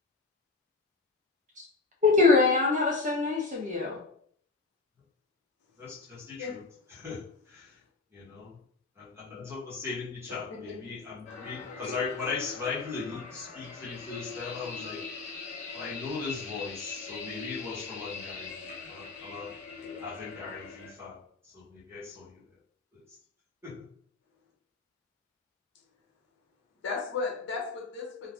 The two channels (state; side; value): quieter; right; 3.8 dB